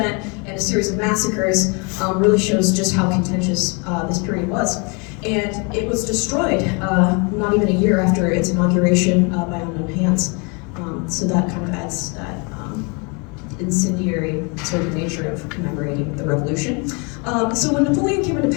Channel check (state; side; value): quieter; right; 32.3 dB